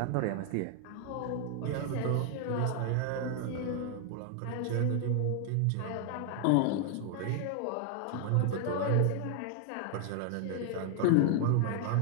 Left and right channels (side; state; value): both; different; correlation 0.00